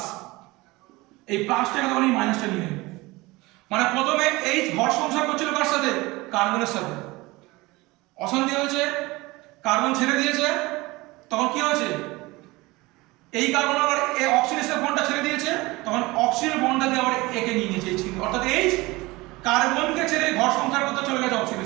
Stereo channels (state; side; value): quieter; left; 21.8 dB